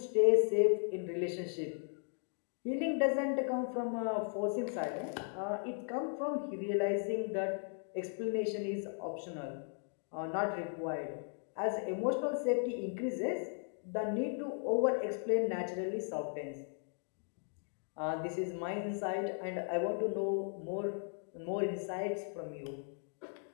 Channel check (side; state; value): right; silent; 53 dB below the other